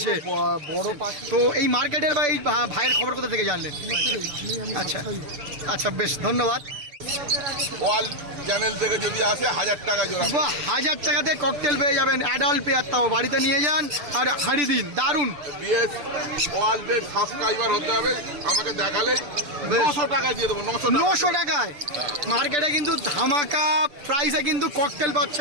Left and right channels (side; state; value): left; late; 6.8 ms